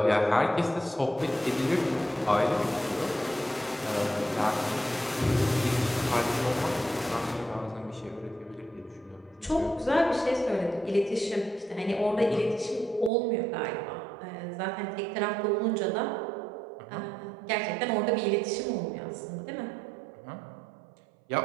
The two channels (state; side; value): drops out; left; at 13.1 s